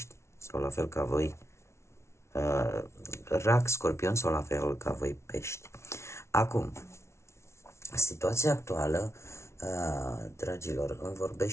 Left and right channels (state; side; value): late; right; 0.13 ms